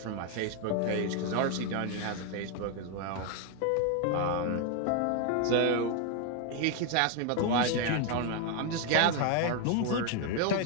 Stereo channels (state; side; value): different; both; correlation 0.01